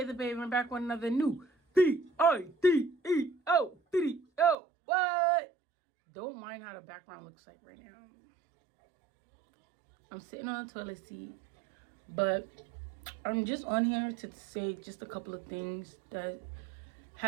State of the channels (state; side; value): drops out; left; at 4.5 s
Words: the Baby. I'm back with another new video video. What? Don't mind how the background looks like right now. I'm sitting on the toilet seat, but I'm just on here to say just a couple of things that